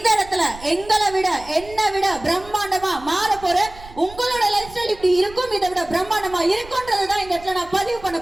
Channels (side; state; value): right; noise; rumble, 18 dB below the sound